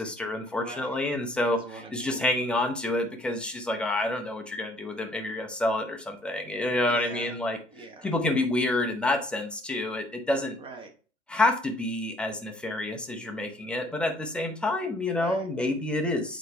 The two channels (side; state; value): both; normal; correlation 0.61